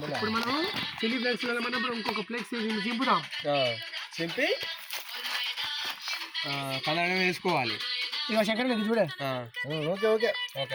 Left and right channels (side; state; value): both; identical; correlation 1.00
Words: మనం చిల్లీ ఫ్లేక్స్ మనం ఇంకొక ఫ్లేక్స్ చింపుదాం. చింపి కలర్ వేసుకోవాలి. ఇక శంకర్ ఇది చూడే. Okay okay